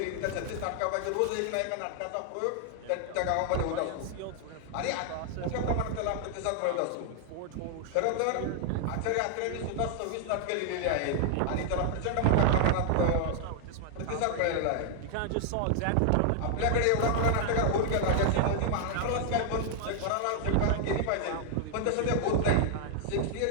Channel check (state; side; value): different; both; correlation 0.00